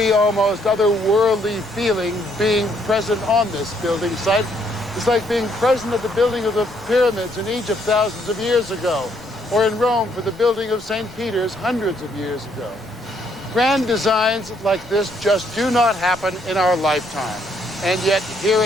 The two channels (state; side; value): normal; both; correlation 0.70